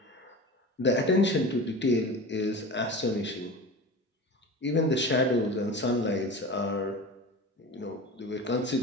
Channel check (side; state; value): both; normal; correlation 0.32